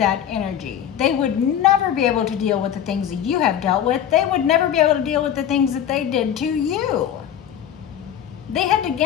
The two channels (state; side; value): quieter; right; 9.8 dB